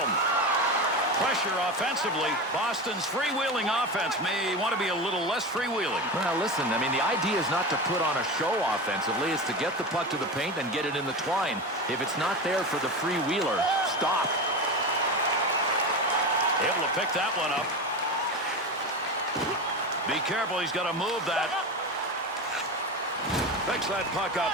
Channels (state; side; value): normal; both; correlation 0.23